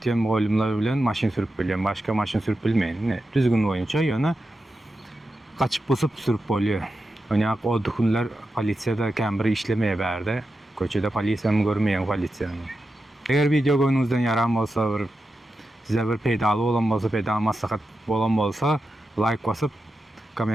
muallimler bilen maşin sürüp biliyorum. Başka maşin sürüp bilmeyin. Düzgün oyunca yana kaçıp basıp sürüp oluyor. Yani o dokunlar polisiyada kembri işlemeye verdi. Köçede polisiyanı görmeyen polisiyanı. Eğer video görünüzden yaram olsa size bir pedalı olan olsa pedal maslahat olan olsa like basıp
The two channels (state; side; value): normal; both; correlation 0.90